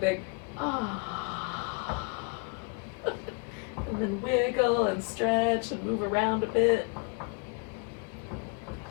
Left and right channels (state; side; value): quieter; right; 34.2 dB